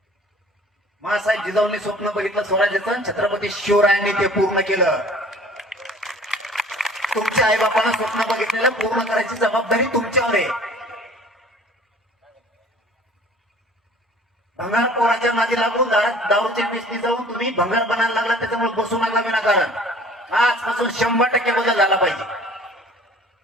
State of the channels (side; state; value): both; normal; correlation 0.49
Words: मासाहेब जिजाऊंनी स्वप्न बघितलं स्वराज्याचं, छत्रपती शिवरायांनी ते पूर्ण केलं. तुमच्या आई बापानं स्वप्न बघितलेलं पूर्ण करायची जबाबदारी तुमच्यावर आहे. भंगार पोराच्या नादी लागून दारूच्या मेसनी जाऊन तुम्ही भंगार बनायला लागला, त्याच्यामुळे बसू लागला विनाकारण. आजपासून 100% बदल झाला पाहिजे.